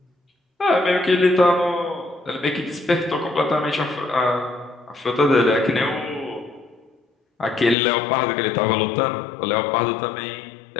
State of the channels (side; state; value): right; drops out; at 7.8 s